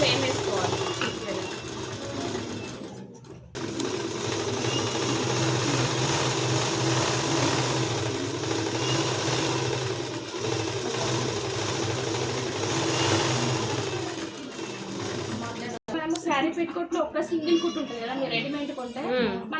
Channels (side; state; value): both; identical; correlation 1.00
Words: సేమ్ వేసుకోవాలి. శారీ పెట్టుకోట్లో ఒక సింగిల్ కుట్టు ఉంటుంది కదా, మీరు రెడీమేడ్ కొంటే